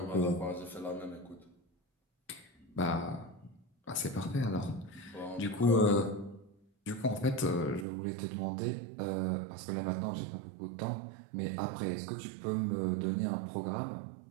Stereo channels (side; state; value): left; drops out; at 7.9 s